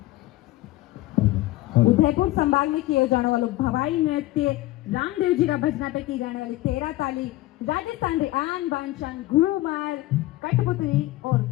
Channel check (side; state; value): right; quieter; 17.2 dB